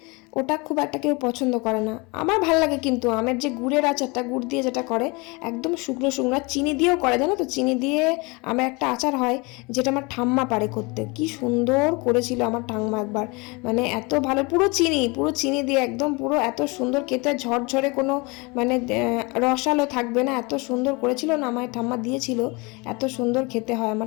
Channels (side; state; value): right; quieter; 27.3 dB